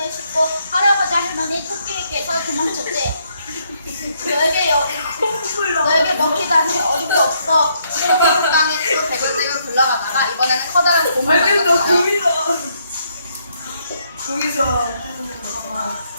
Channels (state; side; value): inverted; both; correlation -0.73